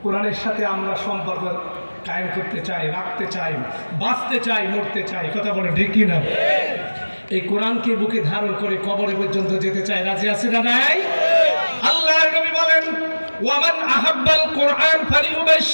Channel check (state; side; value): inverted; both; correlation -1.00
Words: কোরআনের সাথে আমরা সম্পর্ক কায়েম করতে চাই, রাখতে চাই, বাঁচতে চাই, মরতে চাই। কথা বলে ঠিক কি না? এই কোরআনকে বুকে ধারণ করে কবরে পর্যন্ত যেতে চাই। রাজি আছে না নাই? আল্লাহর নবী বলেন, ওয়ামান আহাব্বাল কোরআন